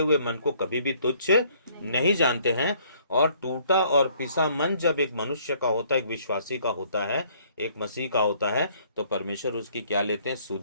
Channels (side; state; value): both; inverted; correlation -0.62